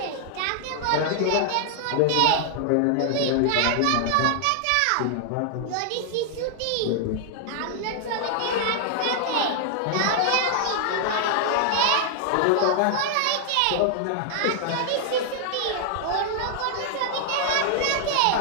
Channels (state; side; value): different; both; correlation 0.00